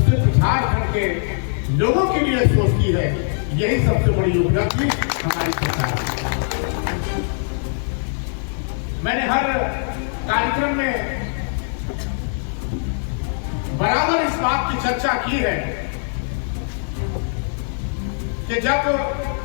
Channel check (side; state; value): right; silent; digital silence